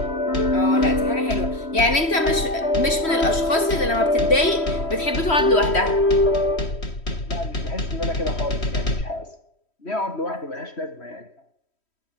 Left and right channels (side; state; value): right; late; 3.1 ms